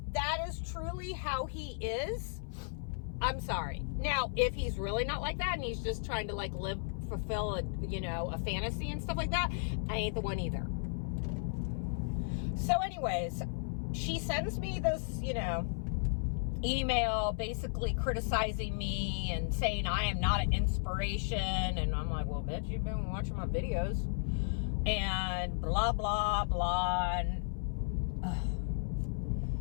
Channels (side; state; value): right; silent; 55 dB below the other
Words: that is truly how he is, I'm sorry. Now, if he's really not like that and he's just trying to like fulfill a, you know, a fantasy and stuff like that, I ain't the one either. So anyways, she sends me this, you know, email basically criticizing me and saying I am not an inspiration. And I'm like, well, bitch, you've been watching my videos and blah, blah, blah. And